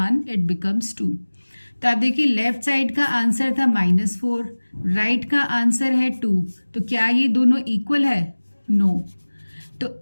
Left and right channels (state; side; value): inverted; both; correlation -1.00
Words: it becomes 2। तो आप देखिए लेफ्ट साइड का आंसर था -4, राइट का आंसर है 2, तो क्या ये दोनों इक्वल है? नो। तो